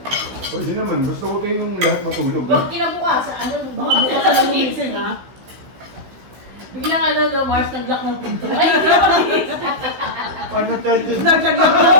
Pwede naman, gusto ko kayong lahat matulog. Huwag kinabukas, ano, baka bukas na lang gumising, ha? Biglang ano, no, Mars, nag-lock ng pinto. Ay, hindi ako nagising. Ano charges? Naglag na ako.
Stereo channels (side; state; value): left; late; 16 ms